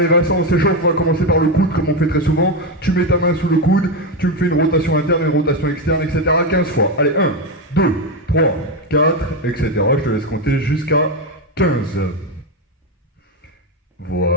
Vincent, on s'échauffe, on va commencer par le coude comme on fait très souvent. Tu mets ta main sous le coude, tu me fais une rotation interne, une rotation externe, etc. 15 fois. Allez, 1, 2, 3, 4, etc. Je te laisse compter jusqu'à 15.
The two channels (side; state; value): both; normal; correlation 0.10